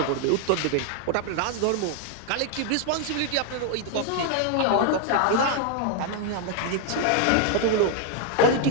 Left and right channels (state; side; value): different; both; correlation 0.01